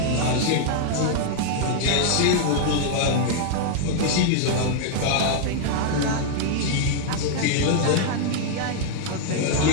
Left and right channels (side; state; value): both; different; correlation 0.00